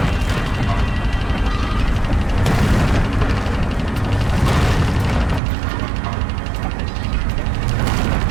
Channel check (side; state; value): left; drops out; at 5.4 s